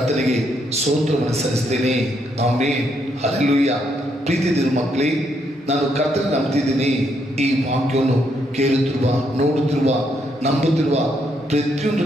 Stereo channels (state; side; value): normal; both; correlation 0.75